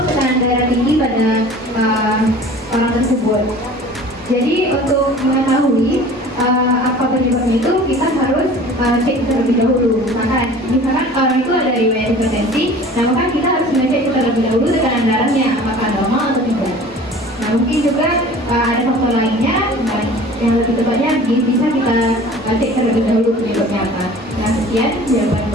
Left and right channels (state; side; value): normal; both; correlation 0.44